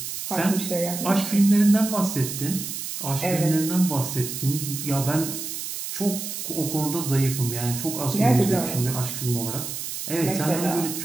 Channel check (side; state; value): right; noise; hiss, 6 dB below the sound